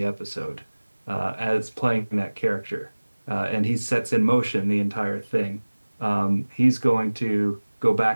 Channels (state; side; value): inverted; both; correlation -1.00